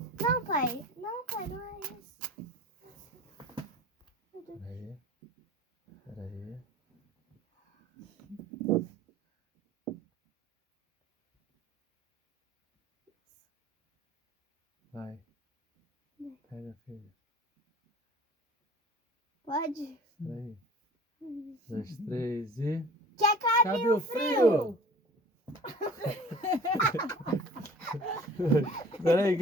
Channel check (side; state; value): both; normal; correlation 0.44